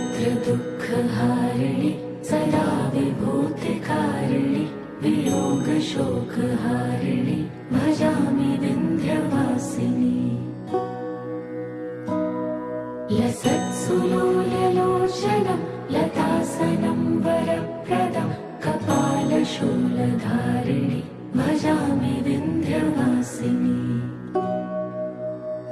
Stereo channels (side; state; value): both; identical; correlation 1.00